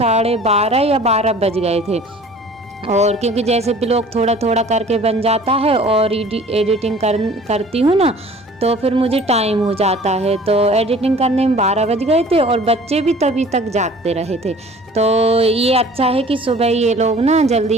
या 12 बज गए थे। और क्योंकि जैसे भी लोग थोड़ा थोड़ा करके बन जाता है और एडिटिंग करती हूँ ना, तो फिर मुझे टाइम हो जाता है। तो एडिटिंग करने में 12 बज गए थे और बच्चे भी तभी तक जागते रहे थे। तो ये अच्छा है कि सुबह ये लोग ना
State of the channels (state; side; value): normal; both; correlation 0.48